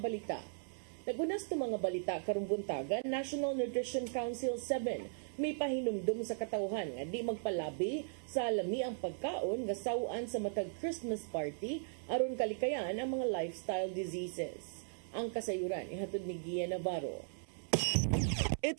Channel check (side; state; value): left; silent; 53 dB below the other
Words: Nagunas to mga balita karong buntagan, National Nutrition Council 7 may pahinumdum sa katawhan nga di magpalabi sa lami ang pagkaon nga sawaan sa matag Christmas party aron kalikayan ang mga lifestyle diseases. Ang kasayuran ihatod ni Gia Navarro.